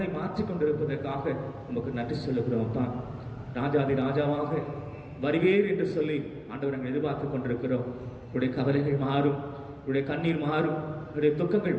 மாற்றிக் கொண்டிருப்பதற்காக உமக்கு நன்றி சொல்லுகிறோம். தான் ராஜாதி ராஜாவாக வருவீர் என்று சொல்லி ஆண்டவர் நாங்கள் எதிர்பார்த்து கொண்டிருக்கிறோம். உடைய கவலைகள் மாறும், உடைய கண்ணீர் மாறும், உடைய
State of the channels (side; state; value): both; identical; correlation 1.00